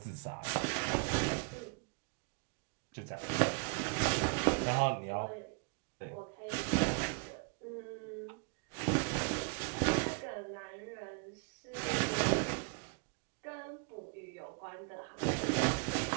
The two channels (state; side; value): quieter; left; 34.2 dB